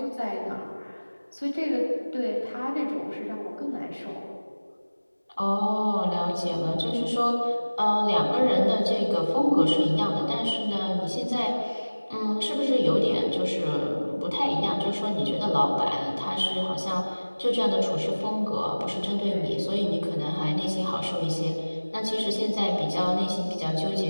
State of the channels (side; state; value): both; inverted; correlation -1.00